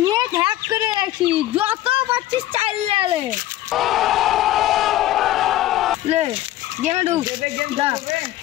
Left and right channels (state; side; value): quieter; right; 14.6 dB